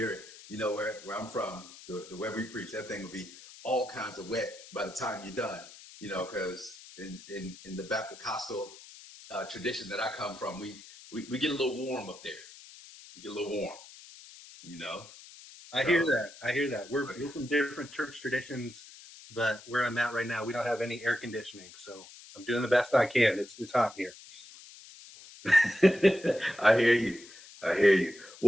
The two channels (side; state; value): left; noise; hiss, 18 dB below the sound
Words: You know, where I'm from, the way we preach, that thing will be all kinds of wet by the time you're done, you know, because in the Baptist tradition that I come from, we get a little warm up there. You get a little warm, you know. I hear that. We're from different church traditions, but where I'm at right now, we don't have any air conditioning, so I'm doing the best I can. It's hot here. I hear you.